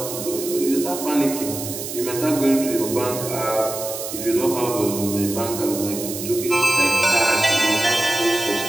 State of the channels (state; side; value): noise; right; hiss, 8 dB below the sound